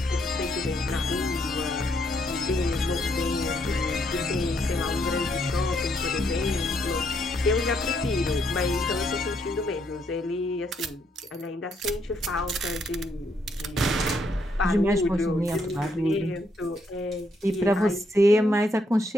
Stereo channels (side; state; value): both; normal; correlation 0.74